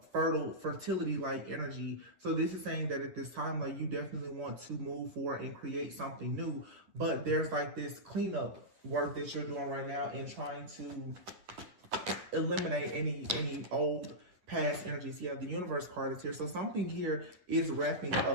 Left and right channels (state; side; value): late; left; 9.8 ms